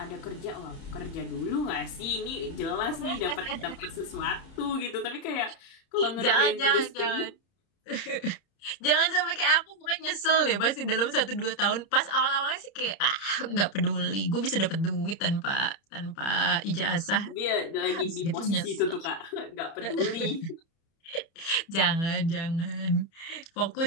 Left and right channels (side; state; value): right; late; 30 ms